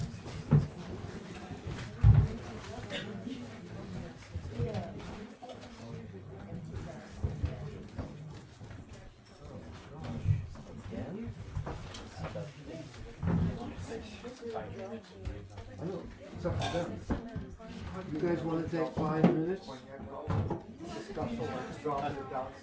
I know, it's up to them. You guys want to take 5 minutes? Dropping it down,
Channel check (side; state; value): both; identical; correlation 1.00